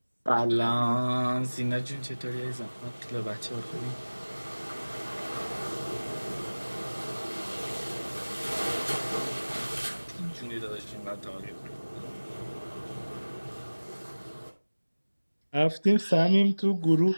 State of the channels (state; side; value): inverted; both; correlation -1.00